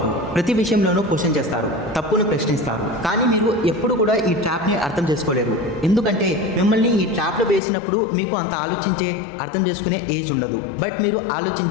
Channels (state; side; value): drops out; right; at 7.6 s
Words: ప్రతి విషయంలోనూ క్వశ్చన్ చేస్తారు, తప్పును ప్రశ్నిస్తారు. కానీ మీరు ఎప్పుడు కూడా ఈ ట్రాప్ని అర్థం చేసుకోలేరు. ఎందుకంటే మిమ్మల్ని ఈ ట్రాప్లో వేసినప్పుడు మీకు అంత ఆలోచించే అర్థం చేసుకునే ఏజ్ ఉండదు. బట్ మీరు